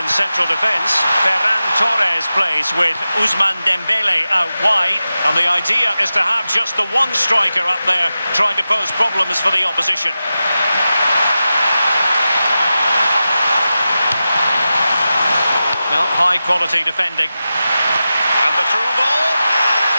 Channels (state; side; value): inverted; both; correlation -0.93